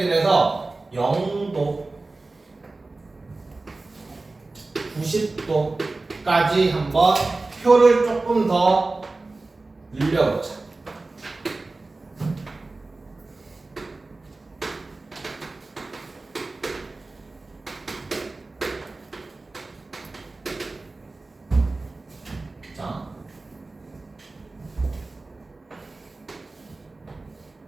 해서 0도, 90도까지 한번 표를 조금 더 늘려보자. 자,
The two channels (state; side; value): quieter; left; 3.3 dB